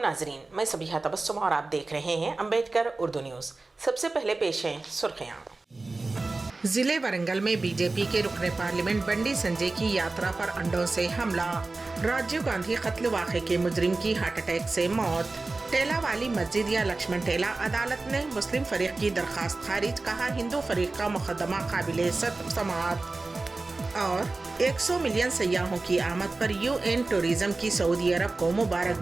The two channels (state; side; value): quieter; left; 3.4 dB